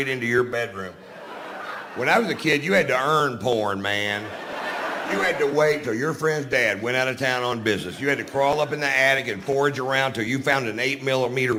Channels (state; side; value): identical; both; correlation 1.00